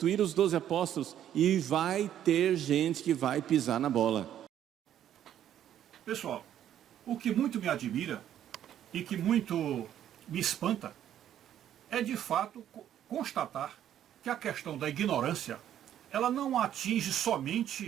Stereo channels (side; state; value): left; quieter; 10.8 dB